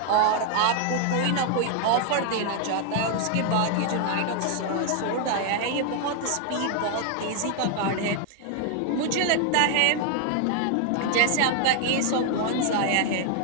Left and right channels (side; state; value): both; different; correlation 0.00